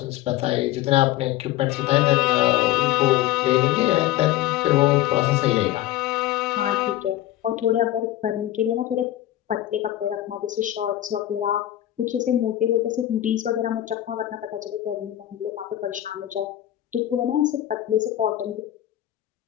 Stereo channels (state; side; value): quieter; right; 13.8 dB